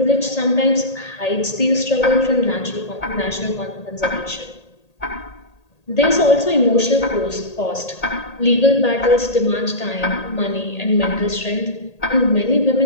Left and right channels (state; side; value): late; right; 1.8 ms